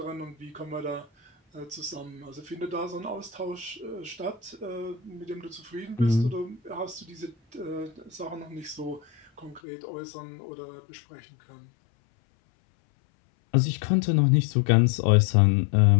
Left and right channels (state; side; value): drops out; right; at 9.6 s